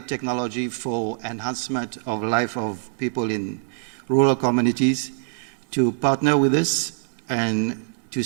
technology for enhancement of life of people in rural communities to partner with us and to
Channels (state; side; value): silent; left; digital silence